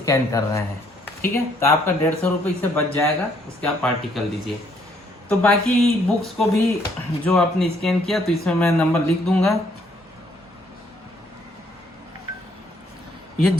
कर रहे हैं, ठीक है। तो आपका 150 रुपये इससे बच जाएगा, उसके आप पार्टी कर लीजिए। तो बाकी बुक्स को भी जो आपने स्कैन किया, तो इसमें मैं नंबर लिख दूंगा। ये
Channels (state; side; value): normal; both; correlation 0.67